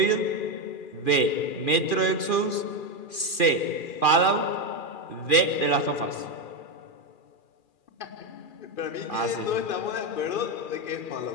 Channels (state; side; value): late; right; 2.4 ms